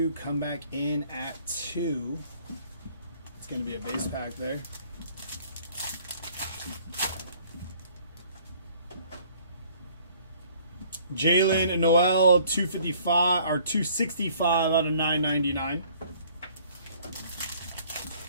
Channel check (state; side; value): inverted; both; correlation -0.58